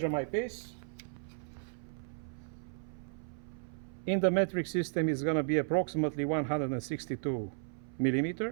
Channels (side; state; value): left; silent; 55 dB below the other